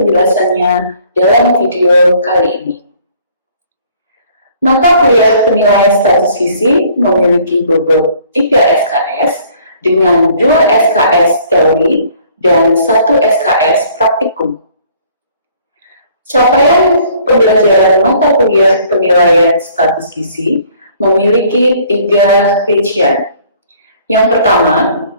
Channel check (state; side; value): inverted; both; correlation -0.58